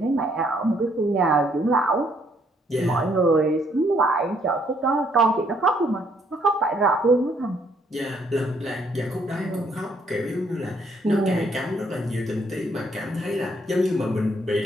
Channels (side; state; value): both; normal; correlation 0.68